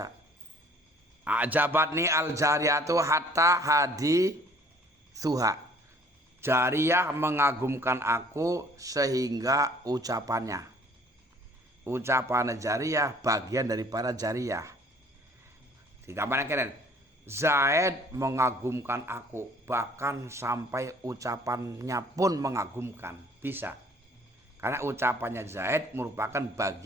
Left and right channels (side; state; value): both; normal; correlation 0.55